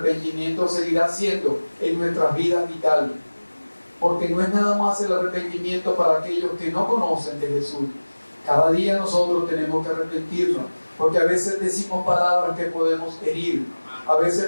seguirá siendo en nuestras vidas vital, porque no es nada más el arrepentimiento para aquellos que no conocen de Jesús. Cada día nosotros tenemos que arrepentirnos, porque a veces decimos palabras que podemos herir, a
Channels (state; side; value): inverted; both; correlation -1.00